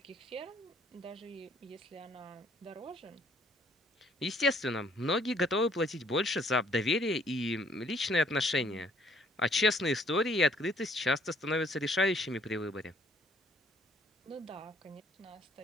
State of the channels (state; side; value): normal; both; correlation 0.63